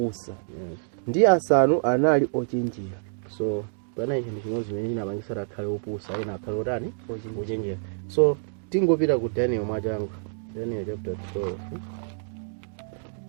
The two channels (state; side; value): silent; left; digital silence